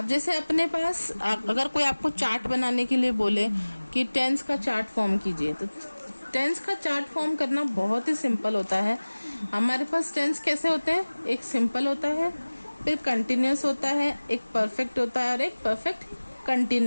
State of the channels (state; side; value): inverted; both; correlation -1.00